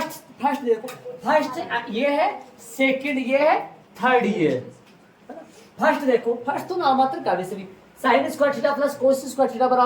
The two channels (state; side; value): identical; both; correlation 1.00